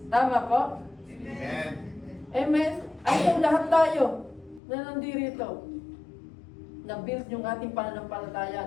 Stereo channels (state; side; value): drops out; right; at 4.6 s